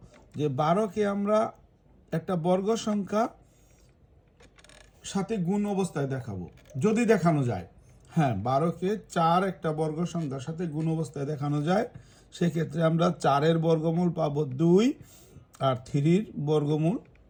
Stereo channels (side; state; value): both; identical; correlation 1.00